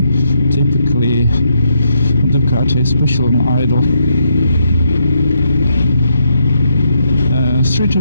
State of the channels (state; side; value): inverted; both; correlation -0.77